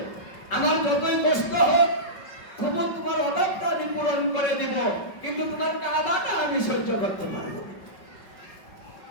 আমার যতই কষ্ট হোক তবু তোমার অভাবটা আমি পূরণ করে দিব, কিন্তু তোমার কাঁদাটা আমি সহ্য করতে পারবো।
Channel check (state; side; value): late; right; 5.3 ms